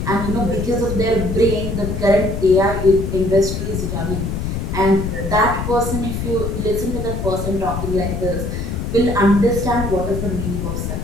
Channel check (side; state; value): left; noise; rumble, 3 dB below the sound